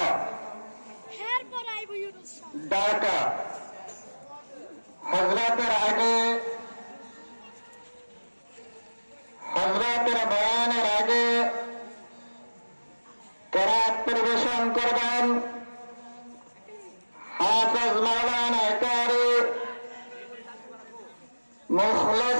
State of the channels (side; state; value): both; inverted; correlation -1.00